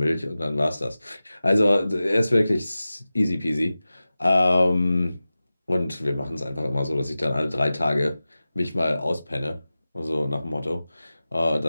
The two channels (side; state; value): both; inverted; correlation -0.96